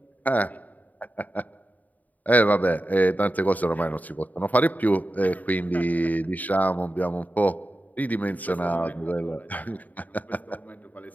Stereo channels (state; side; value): late; right; 0.077 ms